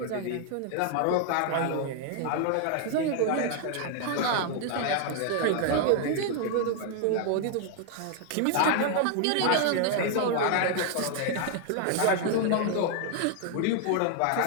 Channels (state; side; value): different; both; correlation 0.00